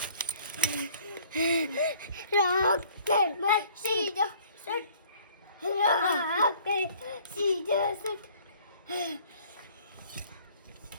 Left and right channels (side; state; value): both; inverted; correlation -0.55